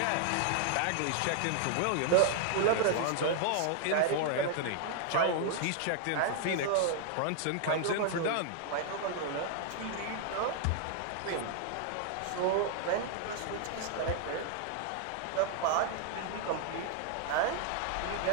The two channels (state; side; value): different; both; correlation 0.00